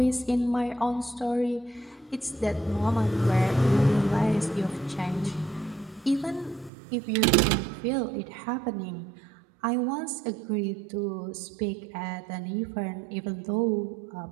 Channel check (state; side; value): drops out; left; at 6.7 s